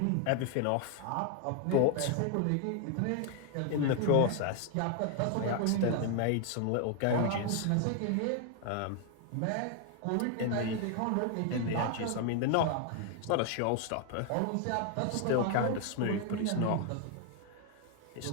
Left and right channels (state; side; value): different; both; correlation 0.00